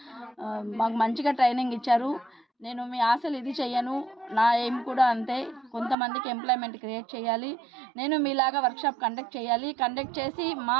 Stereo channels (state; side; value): drops out; left; at 6.0 s